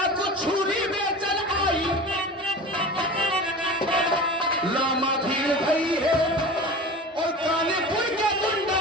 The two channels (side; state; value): both; normal; correlation 0.33